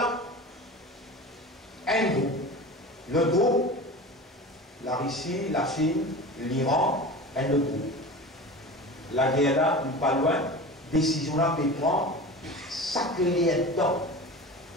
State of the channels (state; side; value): normal; both; correlation 0.33